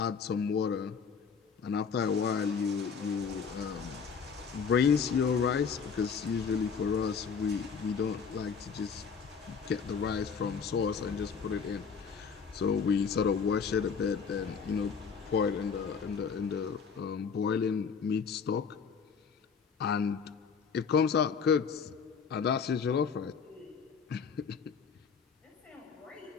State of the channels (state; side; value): quieter; right; 6.1 dB